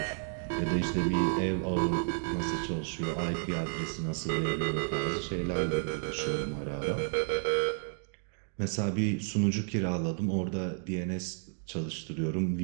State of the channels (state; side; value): silent; left; 56 dB below the other